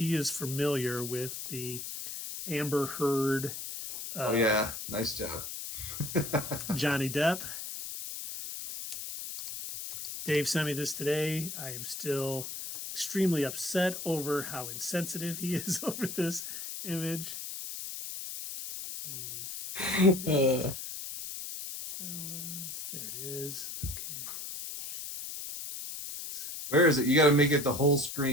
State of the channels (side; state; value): left; noise; hiss, 7 dB below the sound